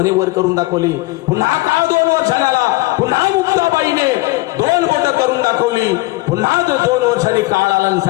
वर करून दाखवली. पुन्हा काळ 2 वर्षांनी आला. पुन्हा मुक्ताबाईने 2 बोट करून दाखवली. पुन्हा 2 वर्षांनी काळ आला आणि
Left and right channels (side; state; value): right; quieter; 21.5 dB